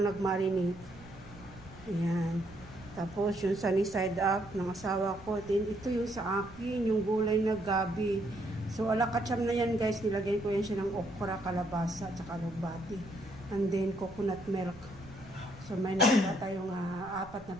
nag-marinate. Ayan. Tapos yung sunny side up ng asawa ko. Then ito yung sa akin, yung gulay na gabi. So alakacham na yan guys. Nilagyan ko yan siya ng okra, kalabasa, at saka lubati. And then coconut milk. So may nakita tayong 4 na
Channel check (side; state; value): right; noise; rumble, 19 dB below the sound